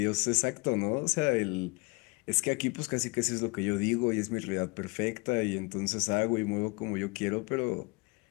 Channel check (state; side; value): quieter; right; 28.1 dB